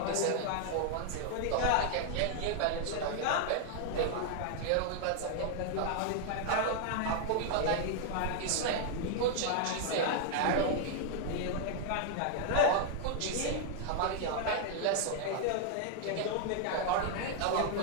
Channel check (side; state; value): both; different; correlation 0.00